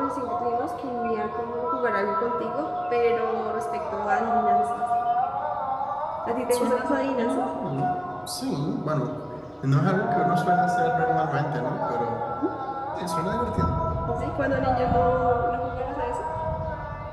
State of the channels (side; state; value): both; identical; correlation 1.00